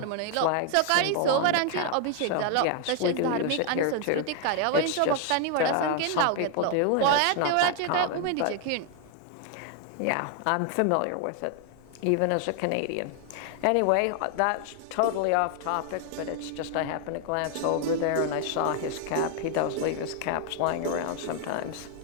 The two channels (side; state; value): both; different; correlation 0.00